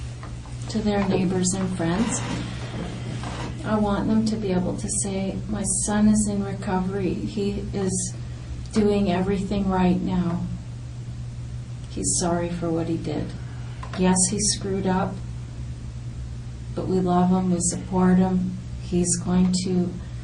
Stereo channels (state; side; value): identical; both; correlation 1.00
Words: to their neighbors and friends. I want them to be able to say, my son is in recovery. He is doing everything right now. He's sorry for what he did. Yes, he screwed up, but we love him, we support him. He's going to